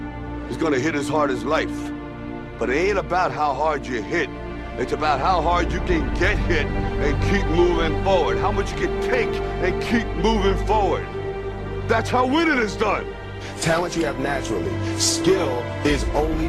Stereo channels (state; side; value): identical; both; correlation 1.00